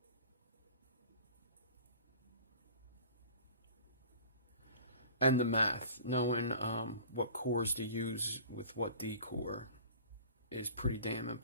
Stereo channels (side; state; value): both; inverted; correlation -0.45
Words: And the math, knowing what cores to use with what D core is pretty damn